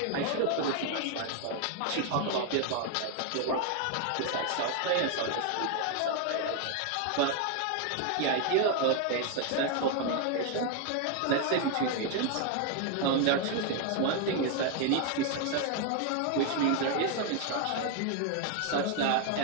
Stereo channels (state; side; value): different; both; correlation 0.01